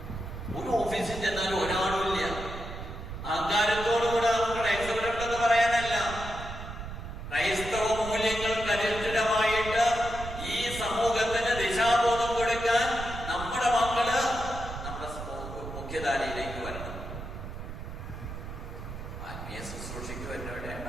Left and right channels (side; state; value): right; noise; rumble, 9 dB below the sound